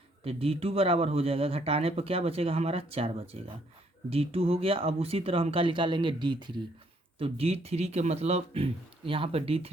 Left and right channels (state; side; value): normal; both; correlation 0.68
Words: तो D2 बराबर हो जाएगा, घटाने पर क्या बचेगा हमारा 4 बचेगा। D2 हो गया। अब उसी तरह हम क्या निकालेंगे D3। तो D3 के मतलब यहाँ पर